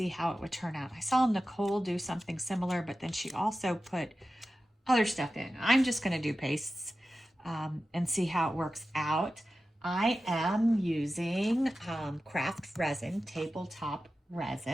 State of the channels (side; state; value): both; normal; correlation 0.93